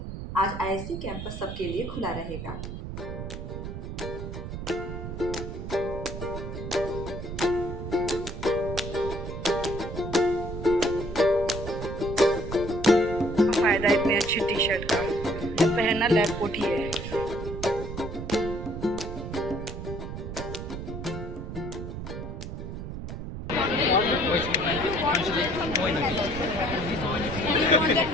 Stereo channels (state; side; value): noise; right; rumble, 7 dB below the sound